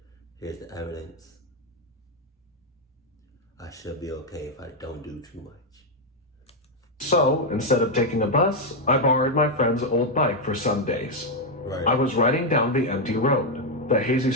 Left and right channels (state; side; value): normal; both; correlation 0.02